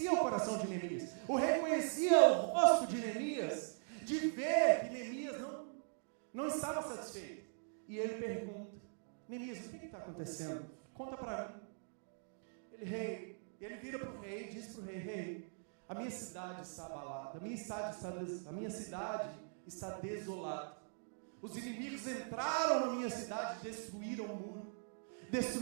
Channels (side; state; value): left; silent; digital silence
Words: o coração de Neemias. O rei conhecia o rosto de Neemias, de ver que Neemias não estava satisfeito. E ele pergunta: Neemias, o que está acontecendo? Conta para mim. Ele vira para o rei e diz para o rei: rei, a minha cidade está abalada, a minha cidade está desolada. Os inimigos entraram na minha cidade e destruíram o muro,